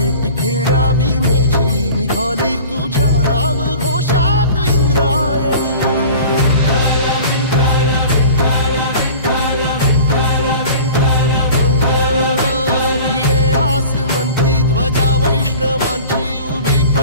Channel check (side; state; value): both; inverted; correlation -0.42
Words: घेण्या भीमेची निघाली तुझ्या राम घोषात इंद्रायणी भिडे आसमंती ध्वजा वैष्णवांची उभी